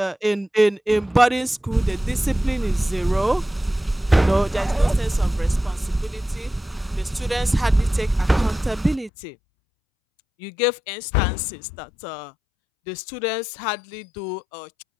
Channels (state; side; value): drops out; right; at 9.1 s